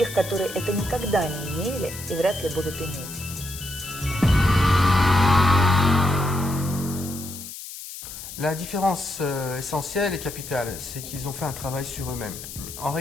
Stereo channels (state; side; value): noise; left; hiss, 11 dB below the sound